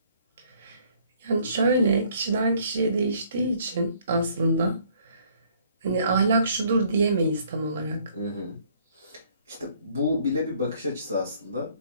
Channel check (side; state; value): both; inverted; correlation -0.62